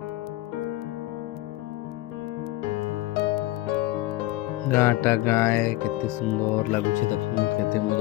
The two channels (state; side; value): quieter; right; 17.7 dB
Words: गाँटा गाय केते सुंदर लगुचे देखुन केते